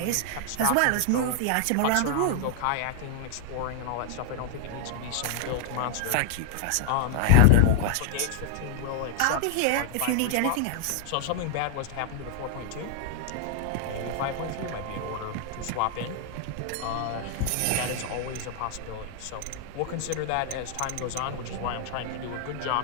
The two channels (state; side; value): different; both; correlation 0.00